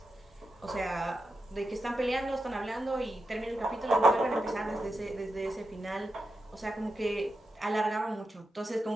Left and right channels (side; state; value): both; normal; correlation 0.88